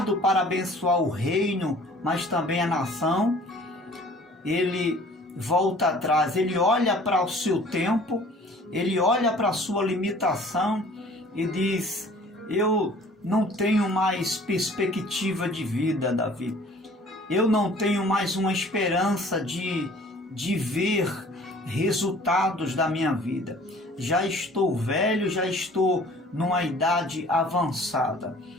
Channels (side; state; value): both; normal; correlation 0.51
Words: para abençoar o reino, mas também a nação, ele volta atrás, ele olha para o seu tempo, ele olha para a sua limitação e diz: eu não tenho mais perspectiva de vida, Davi. Eu não tenho mais uma esperança de ver resultados da minha vida. Já estou velho, já estou numa idade avançada.